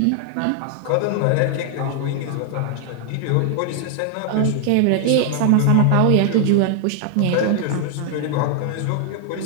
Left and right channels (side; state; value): both; different; correlation 0.00